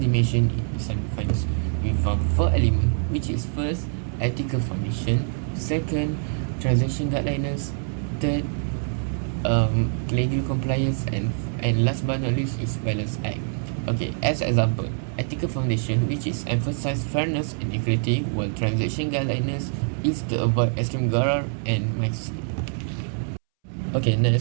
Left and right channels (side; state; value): left; silent; 62 dB below the other